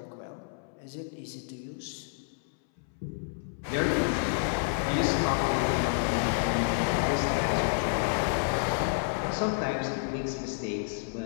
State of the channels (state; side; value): silent; right; 58 dB below the other